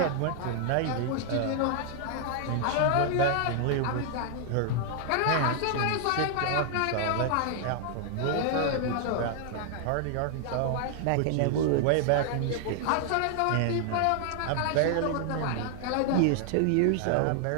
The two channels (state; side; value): different; both; correlation 0.00